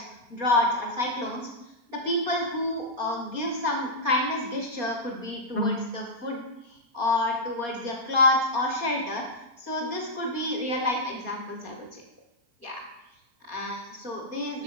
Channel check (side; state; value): left; late; 4.2 ms